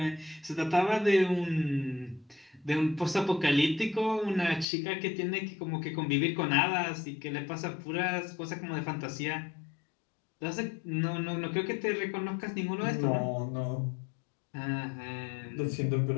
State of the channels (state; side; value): drops out; right; at 4.7 s